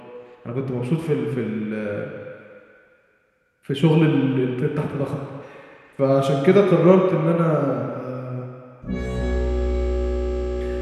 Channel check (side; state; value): both; identical; correlation 1.00